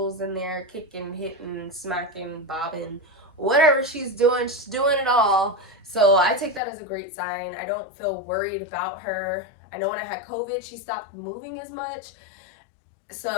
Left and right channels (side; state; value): right; drops out; at 6.6 s